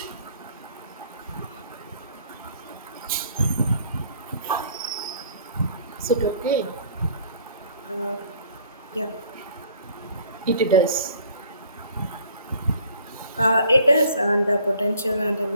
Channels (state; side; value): inverted; both; correlation -0.57